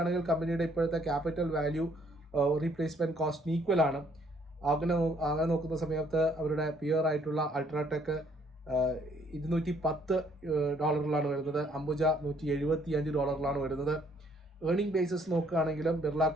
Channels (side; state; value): both; normal; correlation 0.65